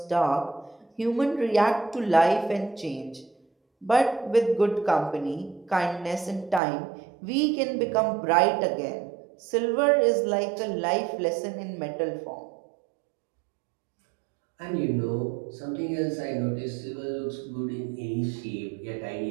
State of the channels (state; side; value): drops out; left; at 6.6 s